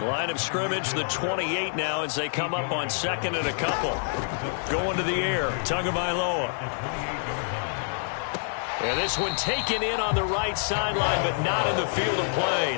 Line of scrimmage, the 28 now as they come up on 2nd and a couple. Going to the air, Tagovailoa. And this one taken in on the right sideline, but not in the field of play.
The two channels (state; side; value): silent; right; digital silence